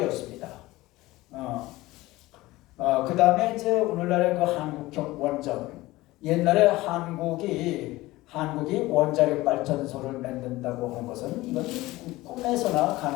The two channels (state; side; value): quieter; right; 18.8 dB